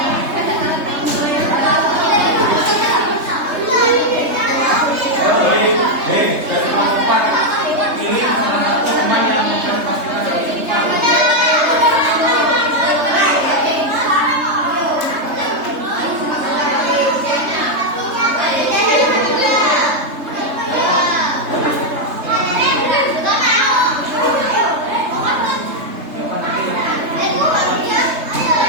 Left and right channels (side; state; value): left; late; 3.3 ms